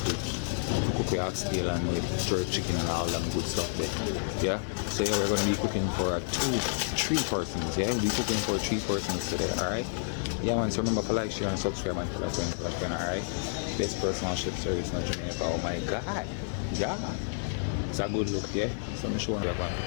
cook the oxtail and with jerk chicken and all them good stuff there. Yeah. So yeah, we're gonna be cooking for three persons. Yeah, we'll be cooking for 3 persons today. Alright. Yeah man, so remember to like, share and subscribe and tell a friend, alright? Best personal chef service in Jamaica. Oh my god. Yeah. It's a good look, yeah. So I'm showing you one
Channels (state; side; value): silent; right; 58 dB below the other